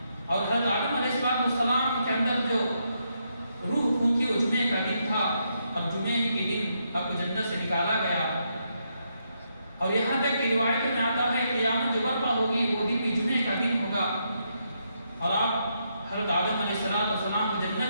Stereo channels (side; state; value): both; inverted; correlation -0.79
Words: اور حضرت آدم علیہ السلام کے اندر جو روح پھونکی وہ جمعے کا دن تھا، اور جمعے کے دن اب جنت سے نکالا گیا۔ اور یہاں تک کہ روایتوں میں آتا ہے کہ قیامت جو برپا ہوگی وہ دن بھی جمعے کا دن ہوگا، اور آپ حضرت آدم علیہ السلام کو